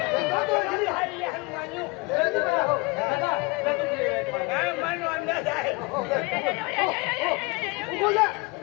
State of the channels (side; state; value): right; quieter; 26.8 dB